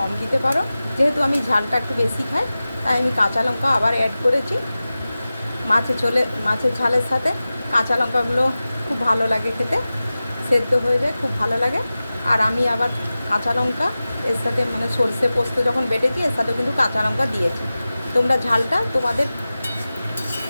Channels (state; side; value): inverted; both; correlation -0.96